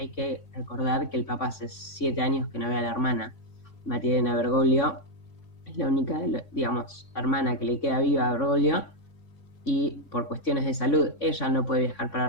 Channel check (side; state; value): right; late; 3.6 ms